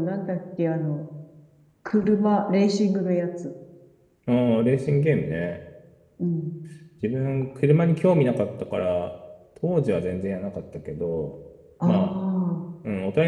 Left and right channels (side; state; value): both; identical; correlation 1.00